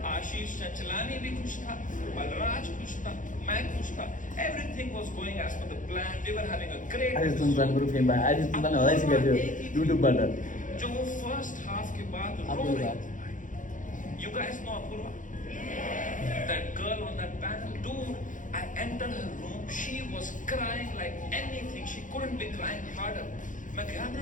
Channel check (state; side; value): late; right; 0.38 ms